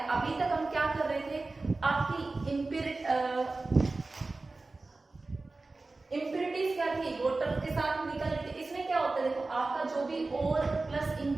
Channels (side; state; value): left; quieter; 3.4 dB